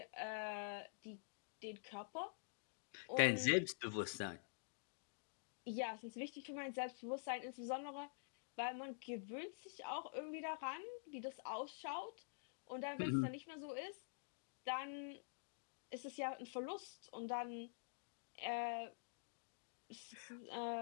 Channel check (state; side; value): silent; right; digital silence